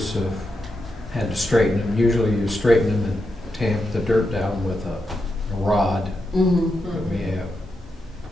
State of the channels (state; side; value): normal; both; correlation 0.86